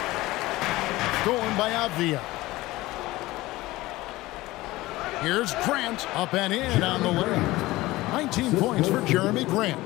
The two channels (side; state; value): right; quieter; 18.7 dB